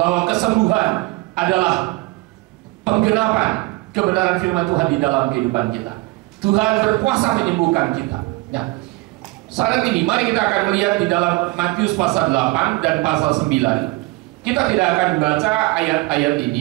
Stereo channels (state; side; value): quieter; left; 22.6 dB